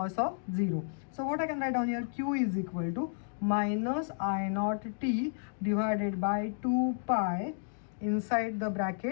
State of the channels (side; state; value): right; silent; digital silence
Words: of 0. So what I can write down here, q is equal to minus I naught t divided by 2 pi inside the